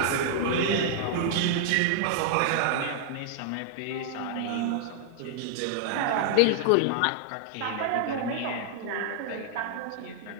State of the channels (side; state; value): both; different; correlation 0.00